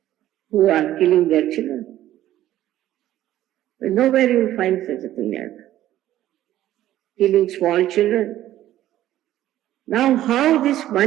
who are killing their children. But nowhere you will find such a thing like that. Killing small children. Now how this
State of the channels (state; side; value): quieter; left; 13.3 dB